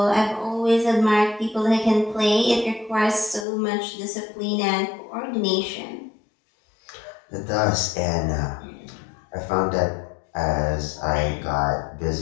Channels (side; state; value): right; drops out; at 3.5 s